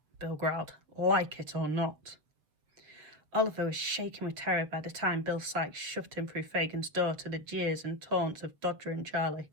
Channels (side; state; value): left; late; 7.1 ms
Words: Bill growled, "like it or not." Oliver was shaking with terror by the time Bill Sikes shoved him through Fagin's door to the jeers and taunts of Dodger and Charlie.